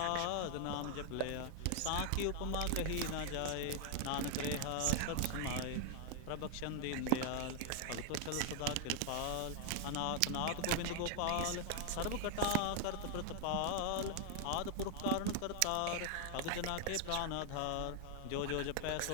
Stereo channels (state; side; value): different; both; correlation 0.00